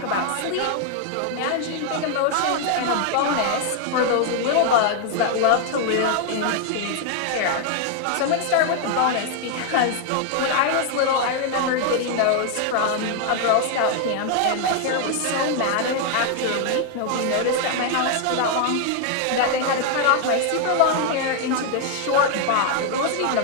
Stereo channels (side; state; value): both; different; correlation 0.00